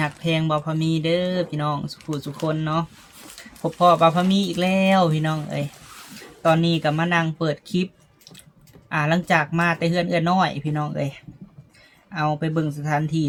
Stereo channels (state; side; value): identical; both; correlation 1.00